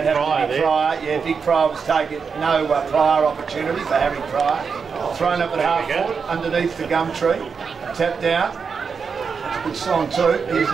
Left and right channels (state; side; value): quieter; left; 5.7 dB